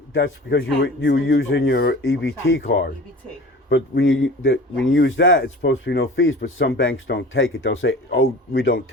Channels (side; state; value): both; normal; correlation 0.40